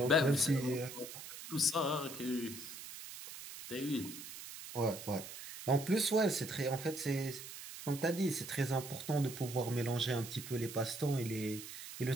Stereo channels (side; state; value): right; noise; hiss, 11 dB below the sound